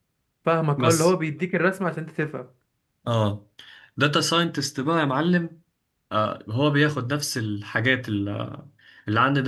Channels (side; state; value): both; identical; correlation 1.00